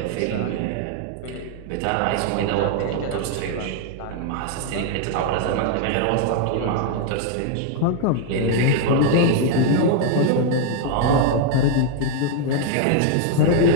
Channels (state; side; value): different; both; correlation 0.00